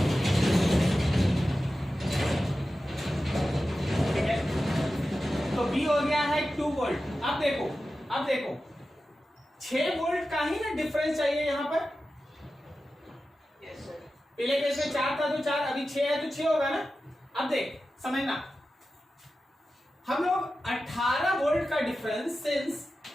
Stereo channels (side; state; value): both; normal; correlation 0.93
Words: ठीक है, तो बी हो गया है 2 वोल्ट। अब देखो 6 वोल्ट का ही ना डिफरेंस चाहिए यहां पर। Yes sir. पहले केस में 4 था तो 4, अभी 6 है तो 6 होगा ना। अब देख समझना, हम लोग 18 वोल्ट का डिफरेंस सिंस